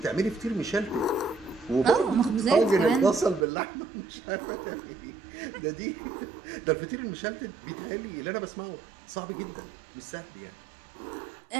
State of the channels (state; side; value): drops out; left; at 3.5 s